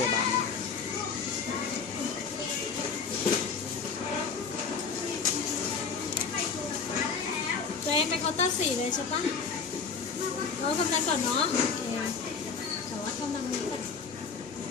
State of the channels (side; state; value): right; quieter; 5.6 dB